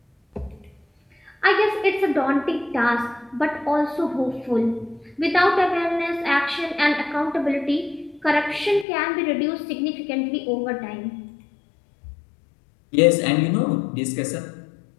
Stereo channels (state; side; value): drops out; right; at 8.8 s